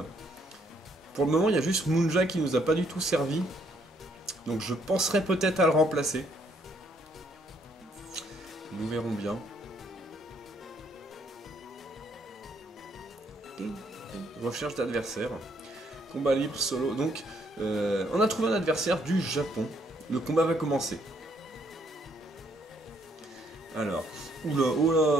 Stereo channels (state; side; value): normal; both; correlation 0.69